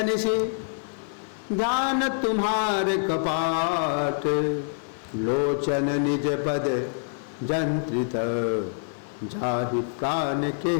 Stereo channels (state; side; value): silent; right; 61 dB below the other